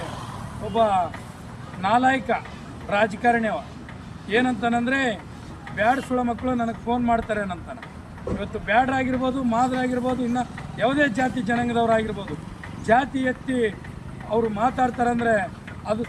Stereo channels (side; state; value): both; identical; correlation 1.00